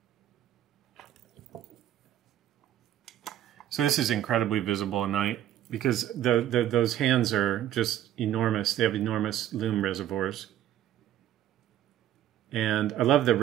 So this is incredibly visible at night because those hands are just enormous. They have enormous loom reservoirs. And I love the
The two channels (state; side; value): quieter; left; 11.8 dB